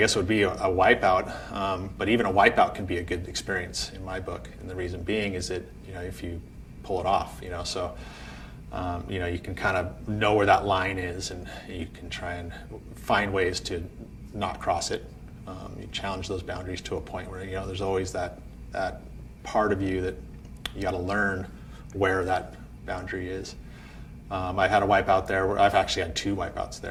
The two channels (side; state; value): both; identical; correlation 1.00